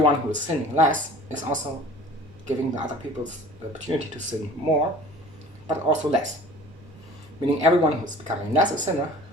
who is sinning less is also giving the other people the opportunity to sin more, but also less. Meaning everyone who is becoming less a sinner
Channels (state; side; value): normal; both; correlation 0.46